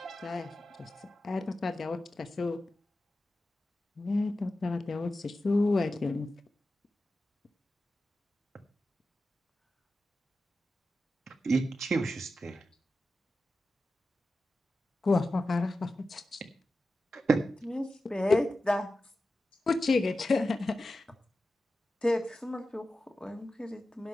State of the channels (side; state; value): both; normal; correlation 0.93